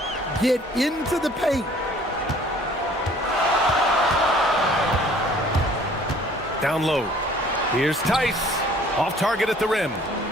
Get into the paint. Down low. Here's Tice. Off target at the rim.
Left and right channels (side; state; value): both; normal; correlation 0.54